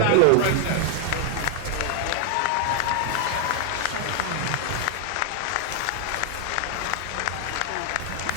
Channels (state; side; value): different; both; correlation 0.00